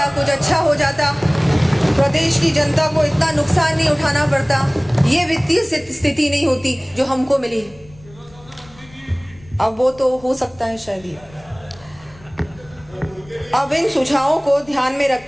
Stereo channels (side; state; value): left; noise; rumble, 25 dB below the sound